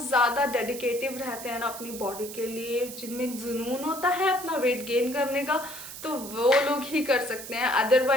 ज़्यादा डेडिकेटिव रहते हैं ना अपनी बॉडी के लिए, जिनमें जुनून होता है अपना वेट गेन करने का, तो वो लोग ही कर सकते हैं।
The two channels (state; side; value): noise; right; hiss, 11 dB below the sound